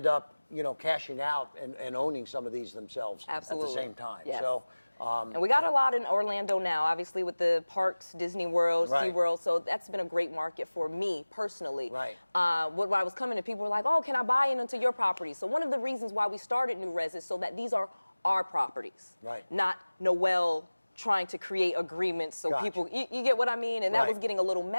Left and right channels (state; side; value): inverted; both; correlation -1.00